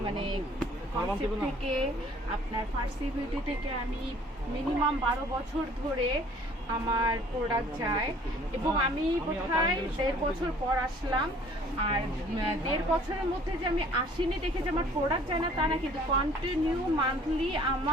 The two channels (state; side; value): normal; both; correlation 0.54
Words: কনসেপ্ট থেকে, আপনার ফার্সি বিউটি থেকে আমি মিনিমাম 12 বছর ধরে আমার প্রোডাক্ট যায়, এবং আমি বোধহয় 1.5 বছর পর আসলাম। আর 1.5 বছরের মধ্যে যে আমি আসিনি দেখে যে আমার প্রোডাক্ট যায় না তা না, কিন্তু কন্টিনিউ মান্থলি